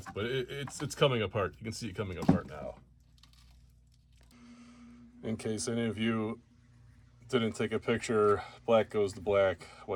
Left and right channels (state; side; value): identical; both; correlation 1.00